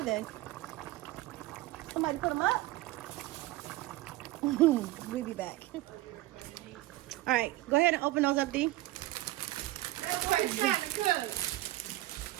they? Somebody put them up? We'll be back. All right, go ahead and open those up, Dee.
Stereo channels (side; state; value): left; quieter; 17.3 dB